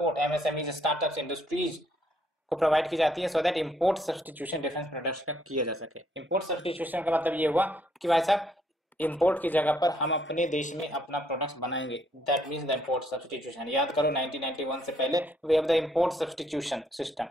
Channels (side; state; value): both; normal; correlation 0.69